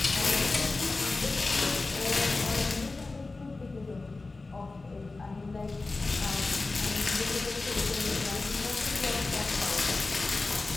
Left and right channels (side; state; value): right; quieter; 3.5 dB